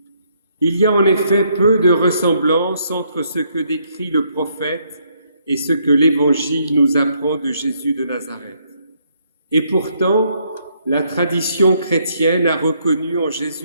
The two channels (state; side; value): inverted; both; correlation -0.72